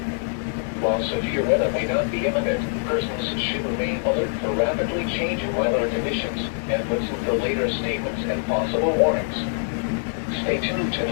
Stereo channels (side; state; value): right; silent; digital silence